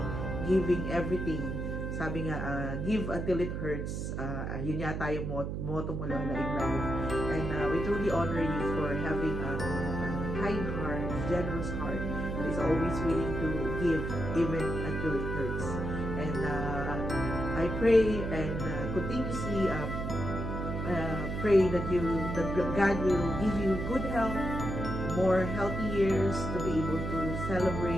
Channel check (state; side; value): noise; right; hum, 3 dB below the sound